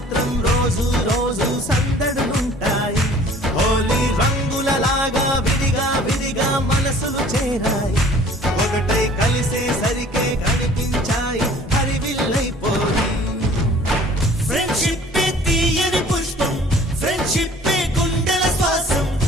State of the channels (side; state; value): both; normal; correlation 0.51